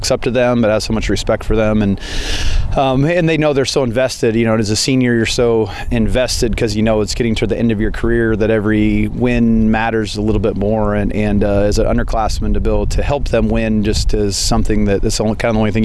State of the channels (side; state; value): both; identical; correlation 1.00